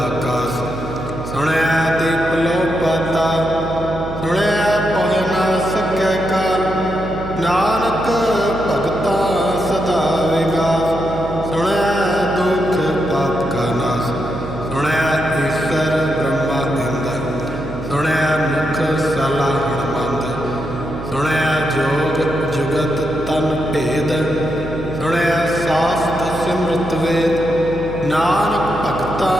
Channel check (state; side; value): noise; right; hum, 9 dB below the sound